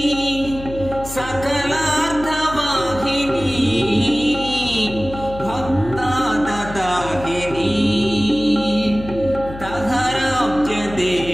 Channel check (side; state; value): left; noise; hum, 13 dB below the sound